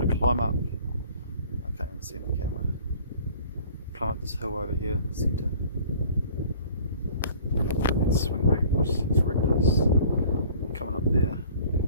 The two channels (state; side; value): inverted; both; correlation -0.49